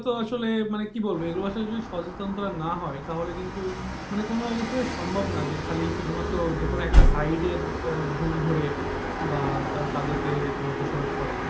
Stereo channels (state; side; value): identical; both; correlation 1.00